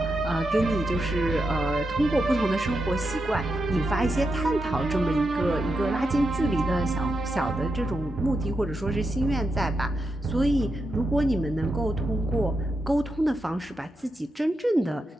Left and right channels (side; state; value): both; normal; correlation 0.86